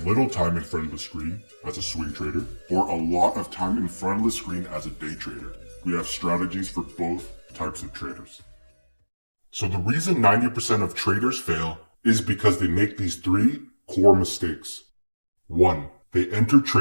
little time in front of the screen as a swing trader or a lot of time in front of the screen as a day trader, we have strategies for both types of traders. So the reason 90% of traders fail is because they make these three core mistakes. 1. They enter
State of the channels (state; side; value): inverted; both; correlation -1.00